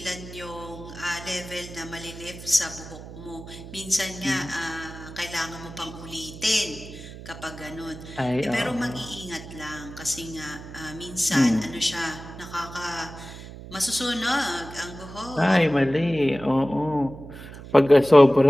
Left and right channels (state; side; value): noise; right; hum, 14 dB below the sound